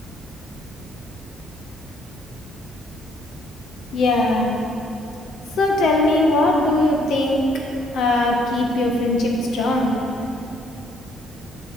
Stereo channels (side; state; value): both; normal; correlation 0.65